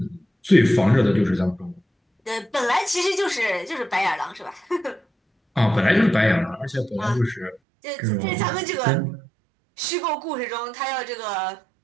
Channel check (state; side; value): drops out; left; at 7.6 s